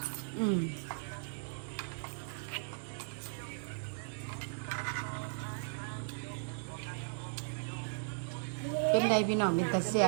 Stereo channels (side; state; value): left; silent; digital silence